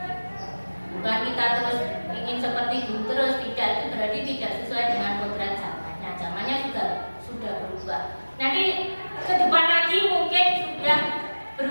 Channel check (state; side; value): inverted; both; correlation -1.00